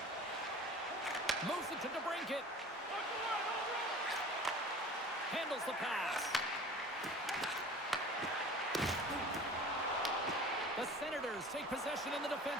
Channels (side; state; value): both; normal; correlation 0.42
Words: Moves it to DeBrincat. Handles the pass. The Senators take possession in the